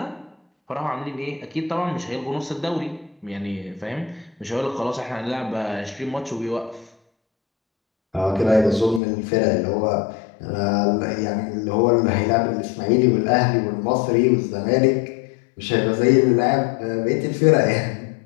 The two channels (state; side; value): drops out; right; at 9.0 s